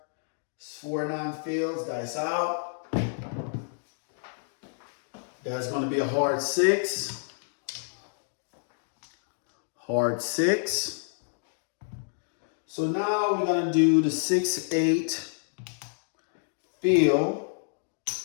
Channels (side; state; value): right; silent; digital silence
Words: 4-9 fields, dice out. That's going to be a hard 6. Hard 6. So now we're going to do the 6-8 field